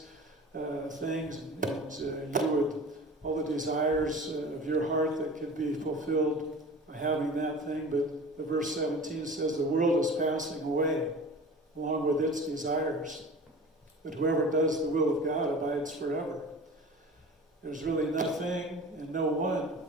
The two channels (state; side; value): normal; both; correlation 0.38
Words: things, and you would, all the desires of your heart that could be fulfilled by having that thing. But the verse 17 says the world is passing away along with its desires. But whoever does the will of God abides forever. There's really nothing and no one